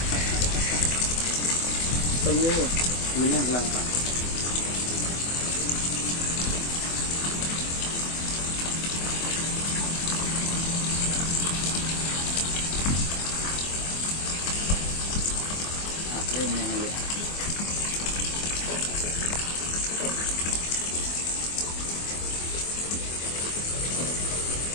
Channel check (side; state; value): right; late; 24 ms